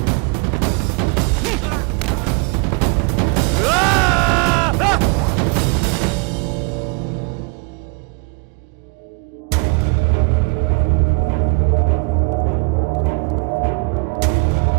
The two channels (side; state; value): left; quieter; 30.9 dB